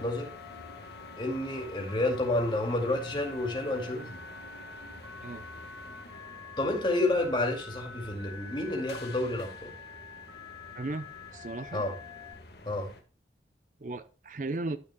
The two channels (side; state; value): both; normal; correlation 0.55